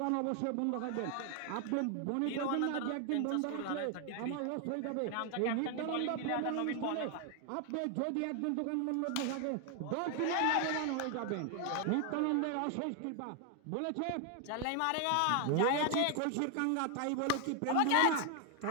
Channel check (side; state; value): both; different; correlation 0.00